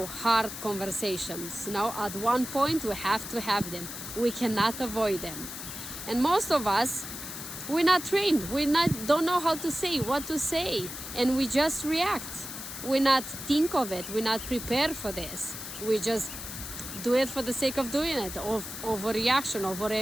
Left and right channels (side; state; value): left; noise; hiss, 9 dB below the sound